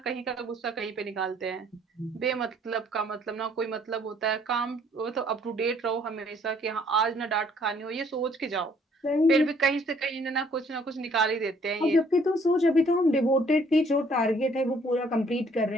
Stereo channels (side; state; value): both; normal; correlation 0.62